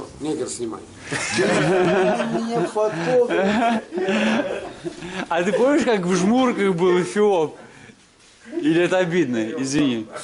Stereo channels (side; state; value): both; identical; correlation 1.00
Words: Негр снимай. Меня фотограф. А ты помнишь, как в Жмурках был Эфиоп? Или это обидно? Извини.